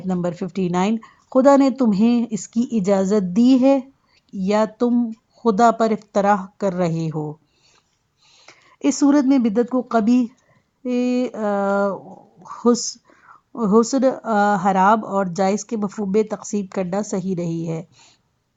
نمبر 59، خدا نے تمہیں اس کی اجازت دی ہے یا تم خدا پر افترا کر رہے ہو۔ اس صورت میں بدعت کو قبیح، حسن، حرام اور جائز کے مفہوم میں تقسیم کرنا صحیح نہیں ہے۔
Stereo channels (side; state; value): both; identical; correlation 1.00